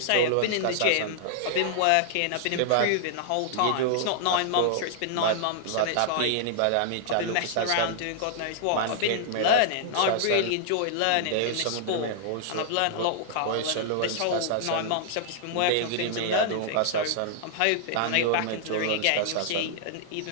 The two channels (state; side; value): different; both; correlation -0.01